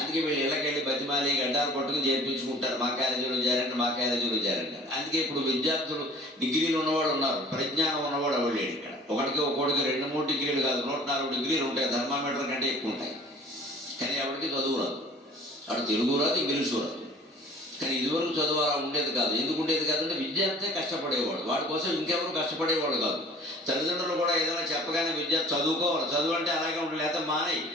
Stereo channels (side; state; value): both; normal; correlation 0.48